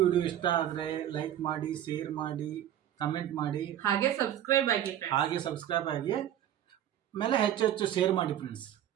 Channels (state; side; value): quieter; left; 11.2 dB